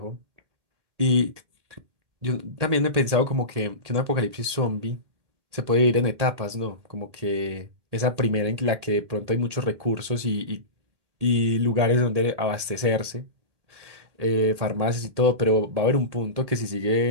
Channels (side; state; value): left; late; 1.8 ms